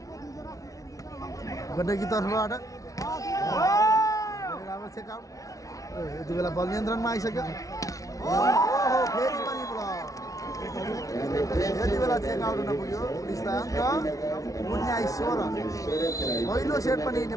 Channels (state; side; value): late; right; 0.17 ms